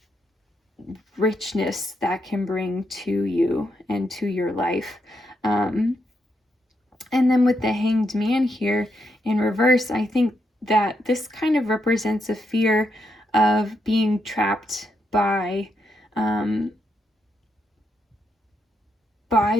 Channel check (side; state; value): both; normal; correlation 0.80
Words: richness that can bring to you and to your life. And then with the Hanged Man here in reverse, I think that this kind of represents a fear of being trapped by